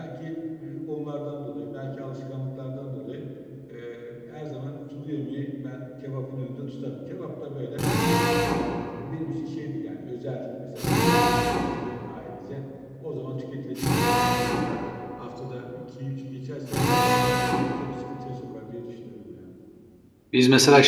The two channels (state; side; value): identical; both; correlation 1.00